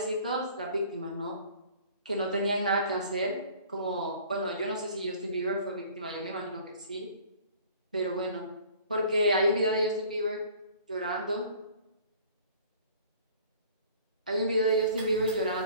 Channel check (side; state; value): both; inverted; correlation -0.50